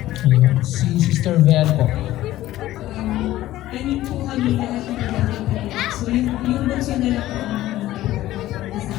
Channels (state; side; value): quieter; right; 15.1 dB